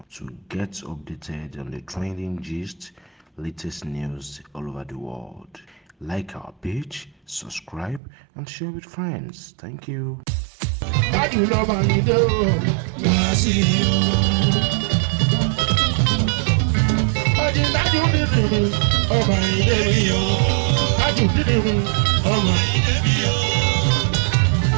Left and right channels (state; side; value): drops out; left; at 8.0 s